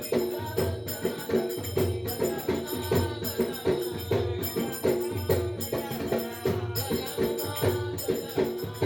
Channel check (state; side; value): identical; both; correlation 1.00